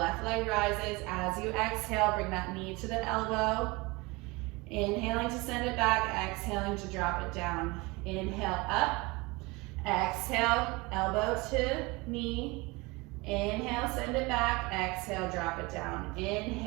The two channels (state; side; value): quieter; left; 24.6 dB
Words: leg rises. As you exhale, bring that knee to the elbow. Inhaling to send it back, exhaling to drop it down. Inhale up. Exhale, elbow to knee. Inhale, send it back. Exhale, drop it down.